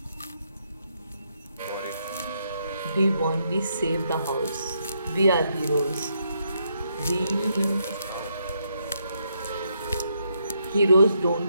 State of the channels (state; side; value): inverted; both; correlation -0.77